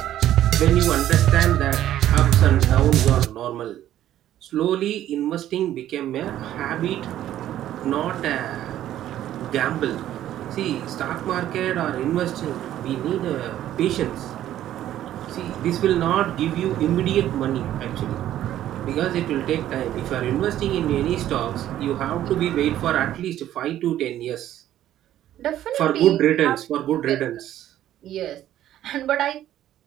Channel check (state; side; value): quieter; left; 12.4 dB